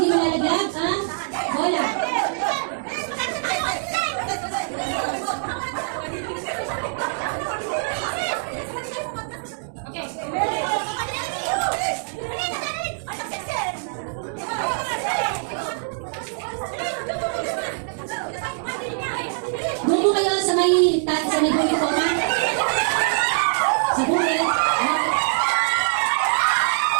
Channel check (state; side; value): silent; left; digital silence